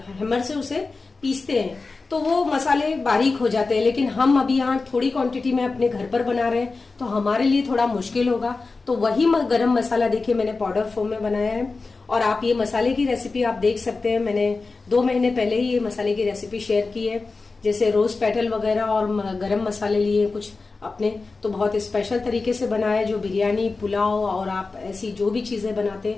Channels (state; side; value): quieter; right; 3.9 dB